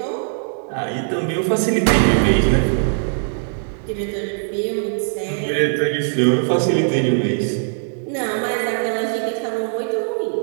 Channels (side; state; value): left; silent; digital silence